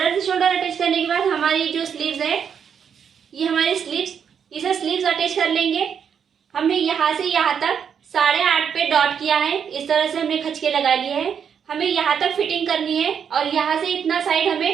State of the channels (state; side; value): quieter; left; 7.5 dB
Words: से शोल्डर अटैच करने के बाद हमारी जो स्लीव्स है, ये हमारी स्लीव्स, इसे स्लीव्स अटैच कर लेंगे। हमने यहाँ से यहाँ तक 8.5 पे डॉट किया है। इस तरह से हमने खचके लगा लिए हैं। हमें यहाँ तक फिटिंग करनी है और यहाँ से इतना साइड